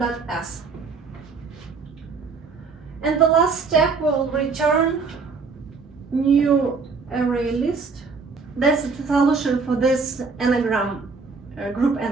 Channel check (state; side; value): quieter; left; 4.7 dB